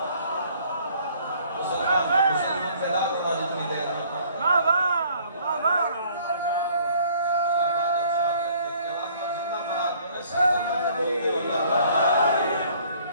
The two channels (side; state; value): both; inverted; correlation -0.58